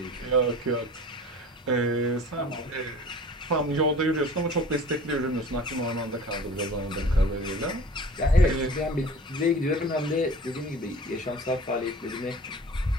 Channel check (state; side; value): normal; both; correlation 0.43